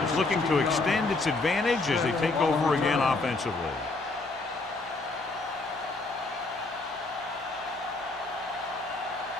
is looking to extend its advantage as they take over again offensively.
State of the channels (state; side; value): quieter; right; 3.4 dB